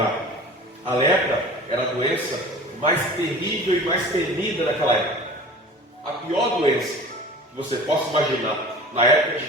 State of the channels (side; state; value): both; normal; correlation 0.40